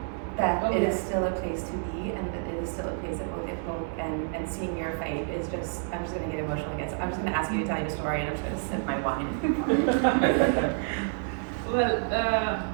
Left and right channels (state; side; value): silent; left; 59 dB below the other